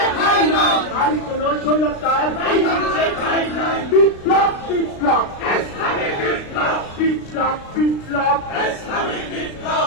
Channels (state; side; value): late; right; 36 ms